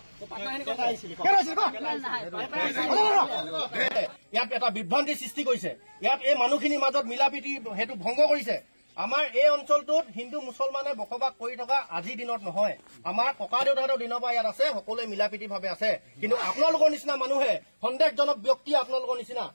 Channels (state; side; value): inverted; both; correlation -1.00